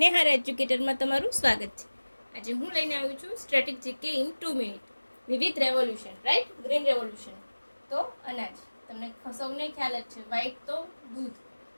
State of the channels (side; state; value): both; inverted; correlation -1.00